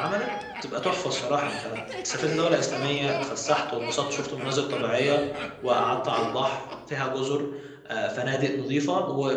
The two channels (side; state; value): both; identical; correlation 1.00